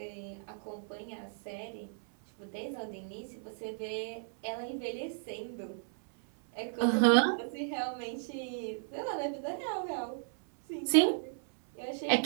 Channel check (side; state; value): left; silent; 55 dB below the other